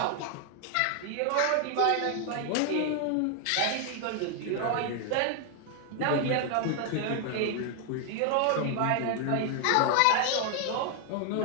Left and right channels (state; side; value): different; both; correlation 0.00